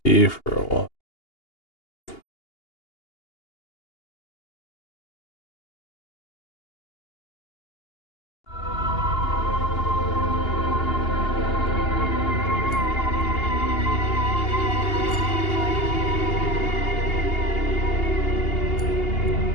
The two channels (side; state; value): right; late; 2.8 ms